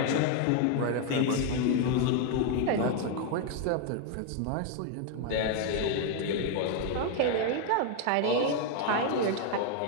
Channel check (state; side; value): different; both; correlation 0.00